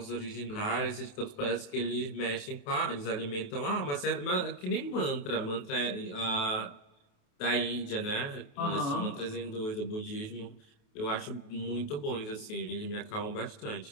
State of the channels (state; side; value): late; right; 28 ms